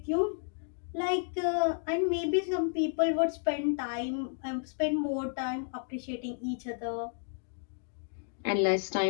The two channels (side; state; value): right; silent; digital silence